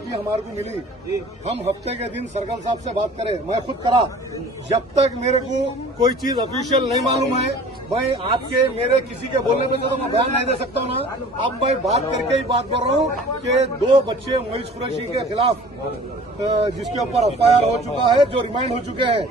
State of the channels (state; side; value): normal; both; correlation 0.46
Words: हमारे को मिली, हम हफ्ते के दिन सर्कल साहब से बात करें, मैं खुद करा, जब तक मेरे को कोई चीज ऑफिशियल नहीं मालूम है, भाई आपके मेरे किसी के बोलने पे तो मैं बयान नहीं दे सकता हूँ ना। अब मैं बात करके ही बात कर रहा हूँ कि 2 बच्चे मोइस कुरैशी के खिलाफ जिसके ऊपर एफआईआर हो चुका है, जो रिमांड हो चुके हैं,